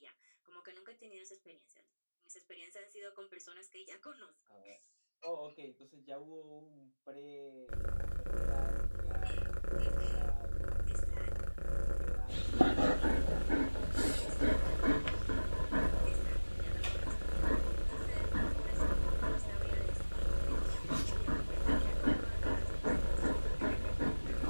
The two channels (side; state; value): both; inverted; correlation -1.00